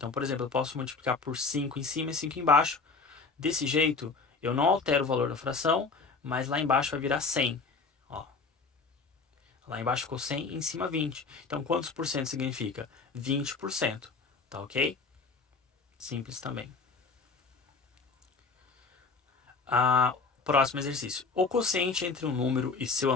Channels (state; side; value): quieter; right; 4.5 dB